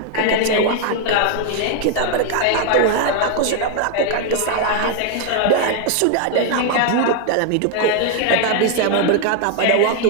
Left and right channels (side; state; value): both; different; correlation 0.00